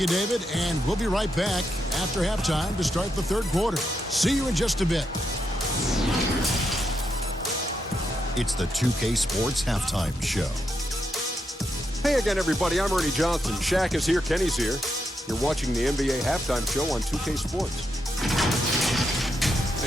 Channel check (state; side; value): normal; both; correlation 0.82